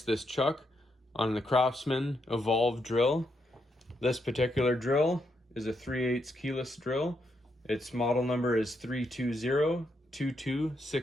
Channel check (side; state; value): both; normal; correlation 0.80